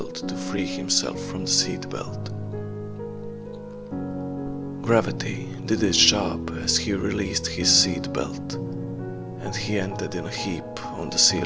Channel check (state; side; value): identical; both; correlation 1.00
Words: to free himself from the seat belt. Gravity did its job as he released his seat belt, and he ended in a heap on the